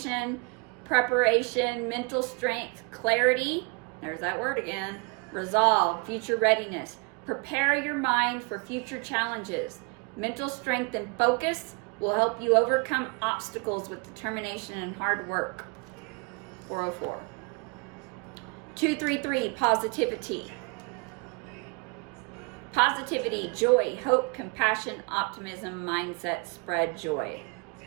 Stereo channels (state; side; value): quieter; left; 30.8 dB